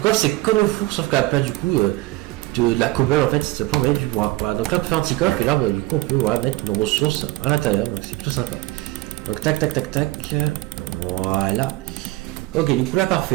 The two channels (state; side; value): quieter; left; 18.9 dB